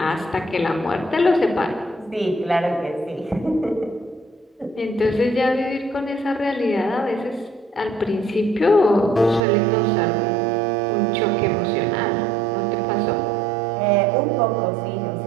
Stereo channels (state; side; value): drops out; left; at 9.4 s